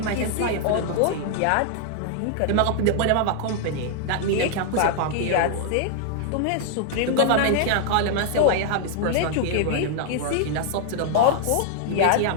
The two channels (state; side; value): different; both; correlation 0.00